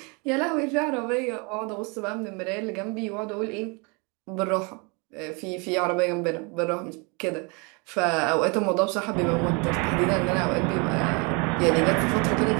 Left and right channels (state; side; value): quieter; left; 31.1 dB